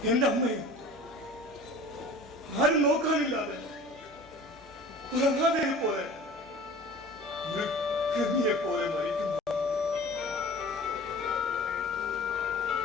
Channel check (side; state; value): both; normal; correlation 0.43